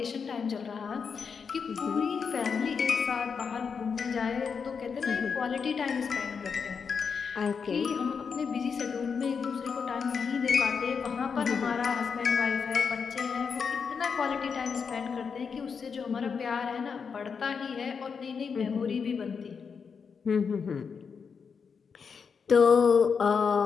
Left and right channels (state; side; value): quieter; right; 6.0 dB